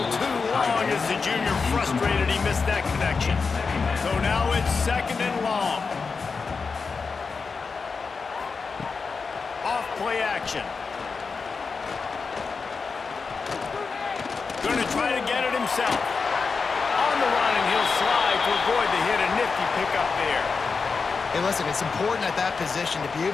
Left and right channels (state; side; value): quieter; right; 4.9 dB